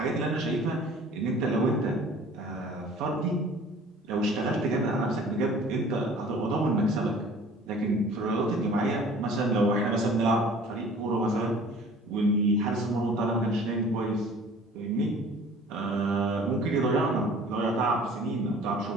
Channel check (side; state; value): both; normal; correlation 0.48